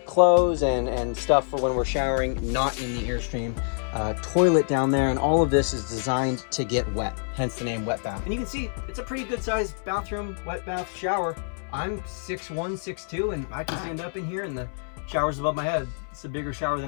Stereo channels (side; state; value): right; silent; 61 dB below the other